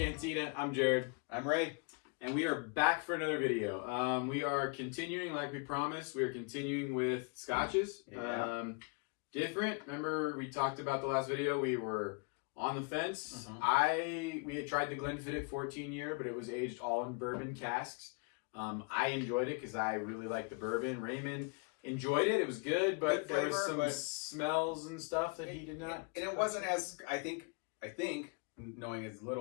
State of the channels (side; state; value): right; quieter; 32.9 dB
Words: I'm Jared. I'm Ray. And we are back for another video. We are continuing, like we promised, we are continuing with Scotches. Yeah. Different. Remember we talked about the last video, we were on the fence. We had tried the Glenlivet 14 year, but it was aged all in bourbon casks. I enjoyed it because I really like the bourbon. Raymond enjoyed it. It was good, but there was some smells and stuff that he did not. And it wasn't as, I think, knowing as